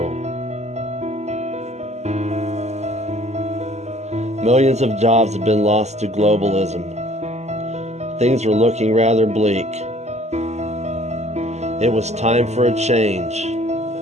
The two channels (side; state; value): left; late; 0.33 ms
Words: Millions of jobs have been lost to globalism. Things were looking rather bleak. It was time for a change.